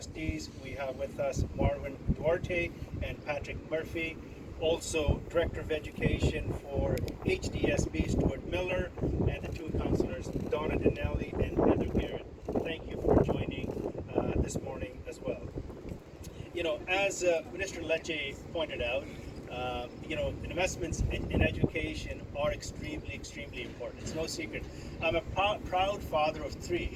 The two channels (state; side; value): identical; both; correlation 1.00